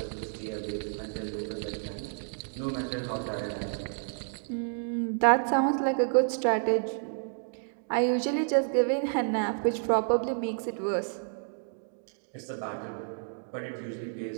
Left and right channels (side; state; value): left; silent; digital silence